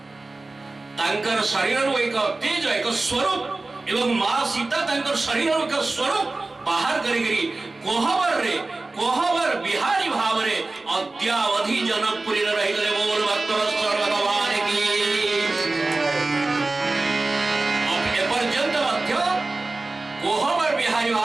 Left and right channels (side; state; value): left; quieter; 3.3 dB